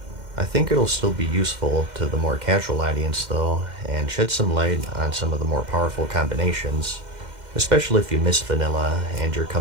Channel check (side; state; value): left; late; 2.1 ms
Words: I think it'll still be useful to the more casual audience though, and shed some light on some of the more powerful combinations, especially if you miss vanilla and you're